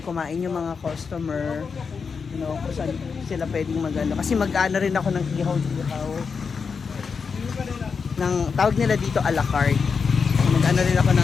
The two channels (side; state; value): right; quieter; 5.5 dB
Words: yung mga customer. You know, kung saan sila pwedeng mag-ano. Kasi mag-ano rin ako ng ihaw-ihaw. Tawag nila dito a la carte. Mag-ano rin ako